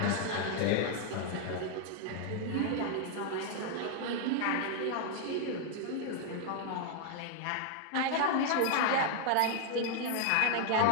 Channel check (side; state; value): both; different; correlation 0.00